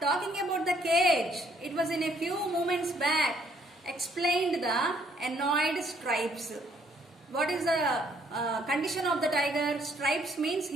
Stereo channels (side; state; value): both; normal; correlation 0.66